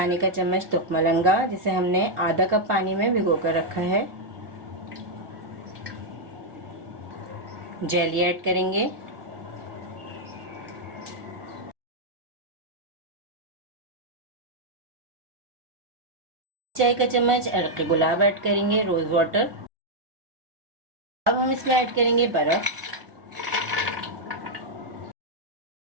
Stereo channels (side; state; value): left; late; 1.6 ms